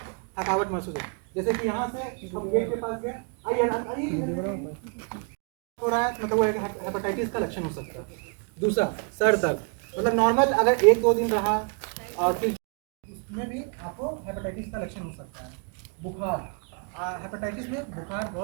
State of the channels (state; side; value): quieter; left; 38.5 dB